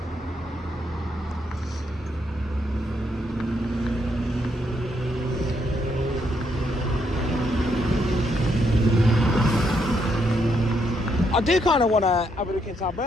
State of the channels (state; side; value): normal; both; correlation 0.76